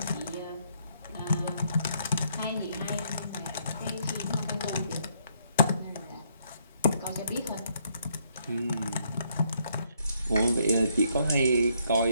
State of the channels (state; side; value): inverted; both; correlation -0.71